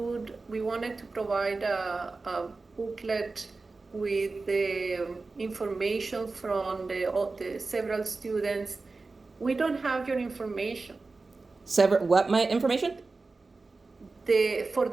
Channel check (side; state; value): left; quieter; 3.8 dB